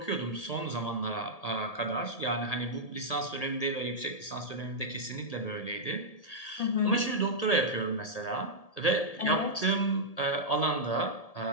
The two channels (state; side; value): late; right; 1.8 ms